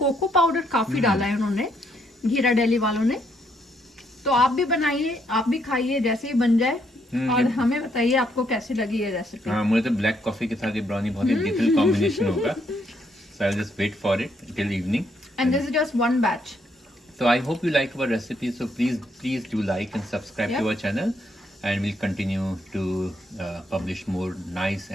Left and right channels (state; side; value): normal; both; correlation 0.73